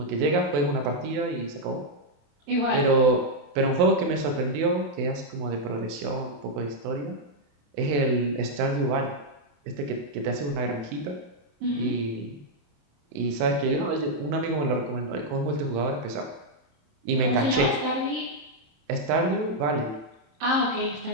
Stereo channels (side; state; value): left; late; 28 ms